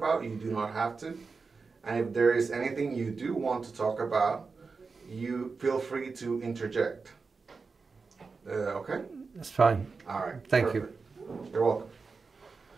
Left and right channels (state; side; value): quieter; left; 4.6 dB